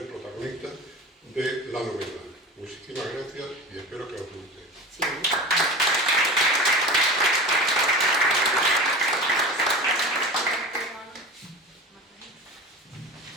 protagonista de la novela. Muchísimas gracias y espero que os guste. Sí.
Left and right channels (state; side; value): normal; both; correlation 0.31